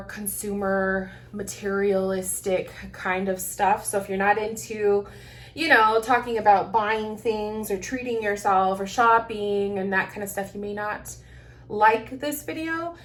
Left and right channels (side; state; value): both; identical; correlation 1.00